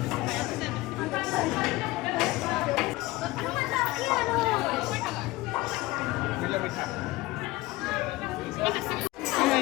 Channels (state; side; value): quieter; right; 19.6 dB